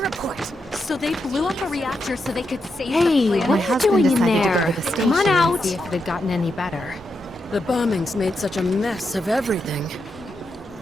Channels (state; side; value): normal; both; correlation 0.85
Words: So they blew up a reactor so they could save Hey, the planet? what are you doing in there? Come on out. See if it had gotten any better. The bombings made such a mess of everything.